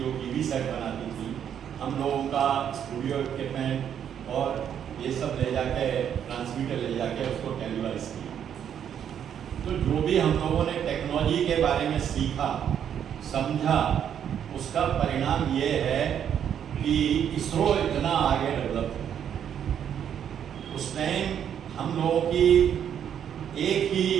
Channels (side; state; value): left; quieter; 9.0 dB